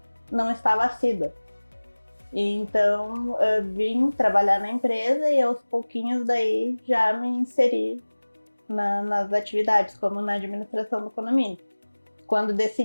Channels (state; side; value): inverted; both; correlation -1.00